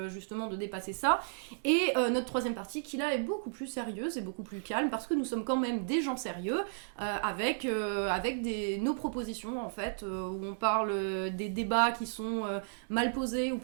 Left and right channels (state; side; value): silent; left; digital silence